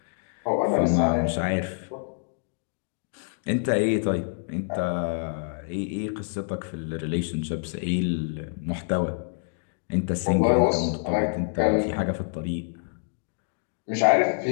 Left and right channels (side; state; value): right; silent; digital silence